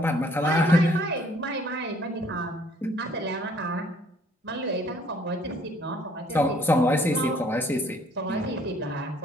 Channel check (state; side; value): normal; both; correlation 0.60